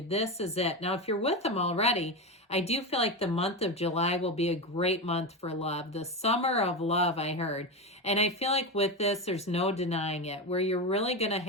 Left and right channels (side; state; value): both; normal; correlation 0.17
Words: this is it. Now, if you're with them already, I do feel like the month of July will be a great month for love. The summer of love, I heard. And I feel like with this, there's no denying it, where you're really going to